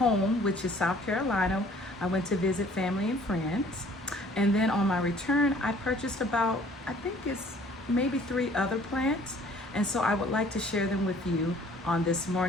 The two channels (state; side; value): normal; both; correlation 0.55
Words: which is South Carolina. I went to visit family and friends. And then on my return, I purchased about, I think it's maybe 3 other plants. And so I would like to share them with you on this